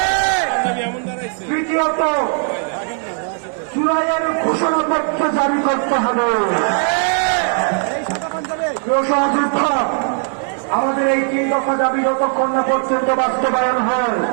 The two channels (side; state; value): left; silent; 55 dB below the other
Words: তৃতীয়ত জুলাইয়ের ঘোষণাপত্র জারি করতে হবে। সহযোদ্ধা, আমাদের এই 3 দফা দাবি যতক্ষণ না পর্যন্ত বাস্তবায়ন হয়